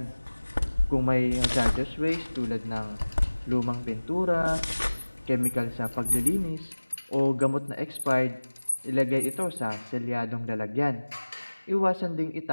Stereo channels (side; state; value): both; inverted; correlation -1.00